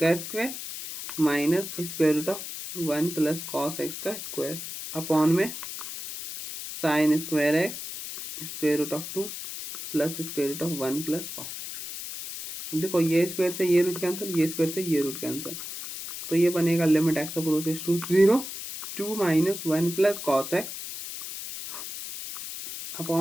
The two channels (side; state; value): left; noise; hiss, 8 dB below the sound